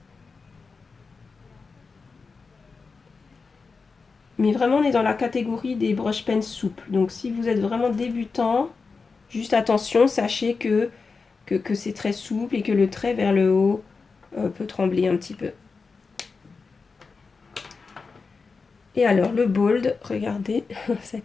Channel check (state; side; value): quieter; right; 4.6 dB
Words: Mais vraiment on est dans la catégorie des brush pens souples. Donc si vous êtes vraiment débutant, juste attention, sachez que c'est très souple et que le trait vers le haut peut trembler un petit peu. Et alors le bold, regardez